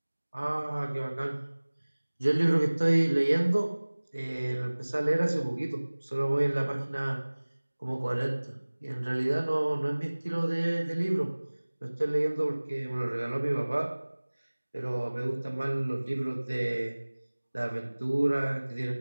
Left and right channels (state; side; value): inverted; both; correlation -1.00